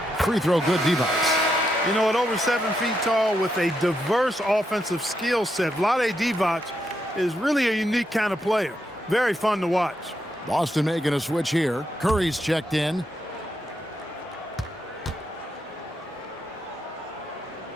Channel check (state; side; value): normal; both; correlation 0.81